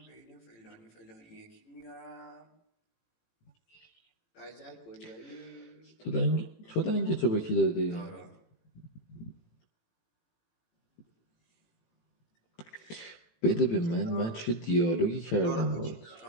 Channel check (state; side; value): late; right; 18 ms